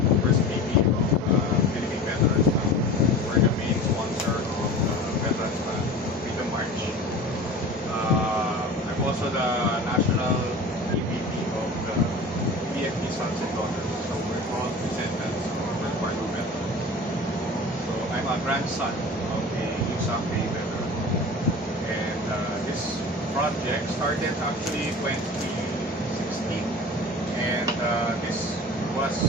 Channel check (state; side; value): normal; both; correlation 0.37